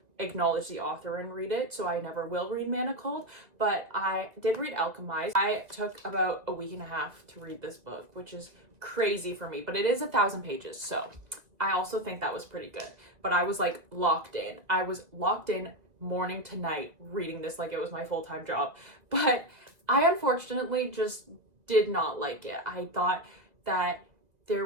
acknowledge the author and read it, so I never will read Manacled, but I did read Alchemized. I took about a week and a half to read this book, which is crazy for me, but it is 1,000 pages, so I also think that was pretty good. But I was like locked in. I was locked in morning to night reading this like it was my full-time job, but I unfortunately just did not like it. I thought that there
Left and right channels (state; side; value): late; left; 2.0 ms